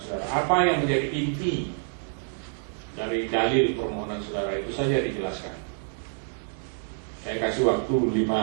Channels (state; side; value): silent; left; 60 dB below the other